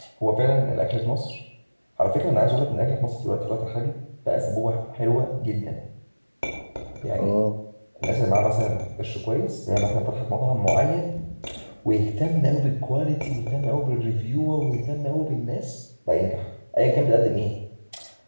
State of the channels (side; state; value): both; inverted; correlation -1.00